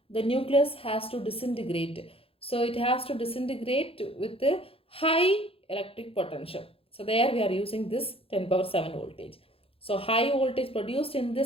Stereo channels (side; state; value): right; late; 0.27 ms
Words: The nucleus has to disintegrate. So it has to disintegrate with the high electric potential. So there we are using this 10 power 7 voltage. So high voltage produced in